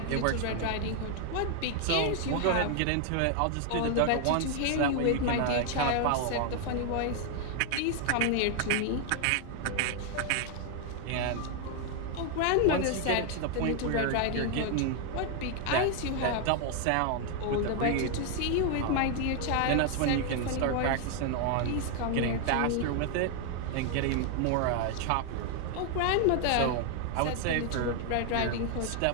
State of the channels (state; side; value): different; both; correlation 0.00